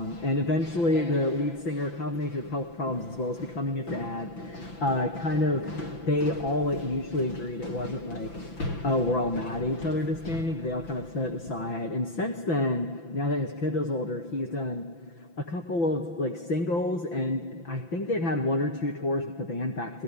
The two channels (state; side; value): late; right; 5.9 ms